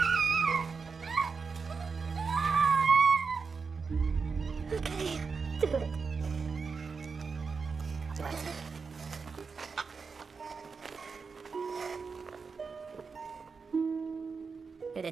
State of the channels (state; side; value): quieter; left; 5.1 dB